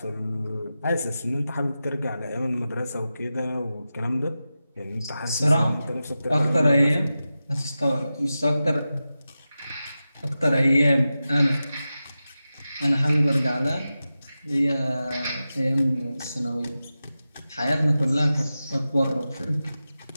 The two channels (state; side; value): inverted; both; correlation -0.93